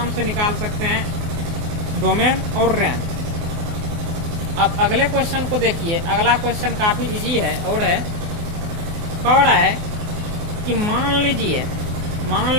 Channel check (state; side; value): late; left; 24 ms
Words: से निकाल सकते हैं डोमेन और रेंज। अब अगले क्वेश्चन को देखिए। अगला क्वेश्चन काफी इजी है और है, कह रहा है कि मान